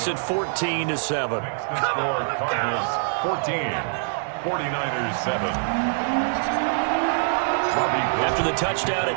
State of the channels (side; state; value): left; silent; digital silence